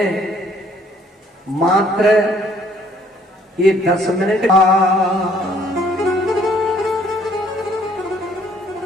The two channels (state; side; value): normal; both; correlation 0.62